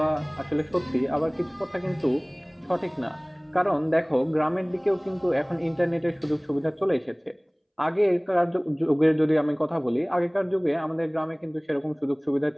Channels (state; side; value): identical; both; correlation 1.00